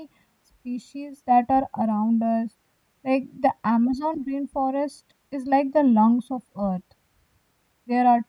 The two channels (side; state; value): both; identical; correlation 1.00